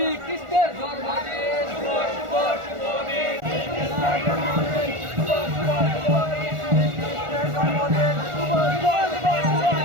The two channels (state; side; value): late; left; 1.4 ms